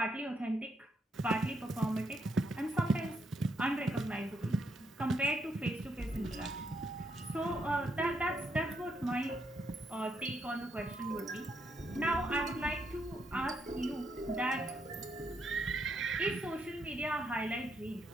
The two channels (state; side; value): normal; both; correlation 0.77